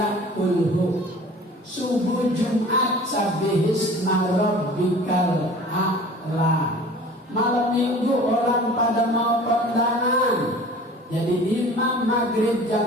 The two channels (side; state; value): both; normal; correlation 0.44